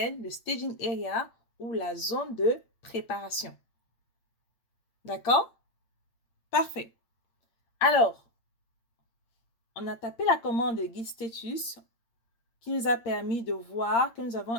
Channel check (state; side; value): late; right; 8.8 ms